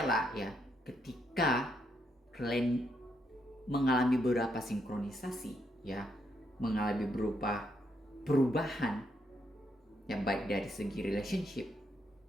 ya, ketika kalian mengalami beberapa sinkronisasi, ya, mengalami berupa perubahan, ya, baik dari segi relationship,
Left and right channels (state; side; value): normal; both; correlation 0.77